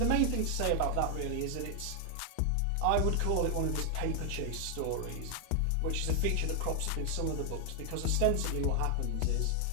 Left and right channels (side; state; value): both; different; correlation 0.00